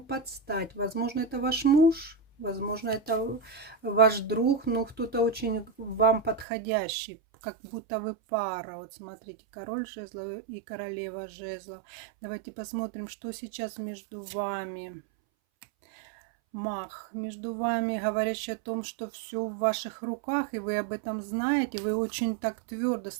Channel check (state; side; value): drops out; left; at 6.5 s